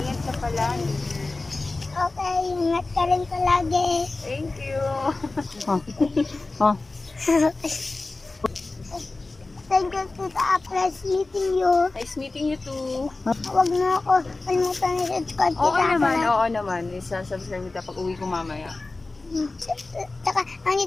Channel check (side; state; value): right; quieter; 3.3 dB